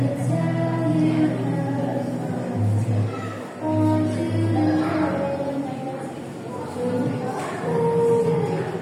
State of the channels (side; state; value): both; identical; correlation 1.00